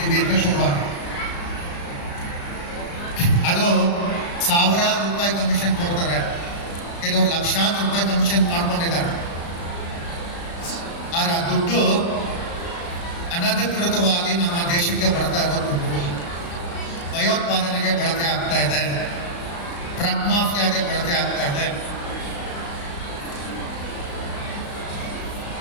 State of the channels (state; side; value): late; right; 35 ms